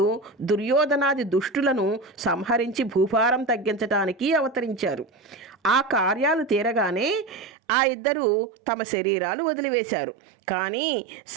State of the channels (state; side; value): drops out; left; at 7.5 s